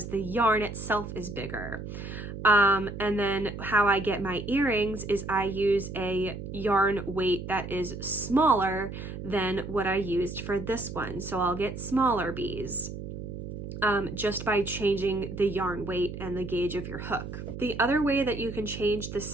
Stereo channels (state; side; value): noise; right; hum, 8 dB below the sound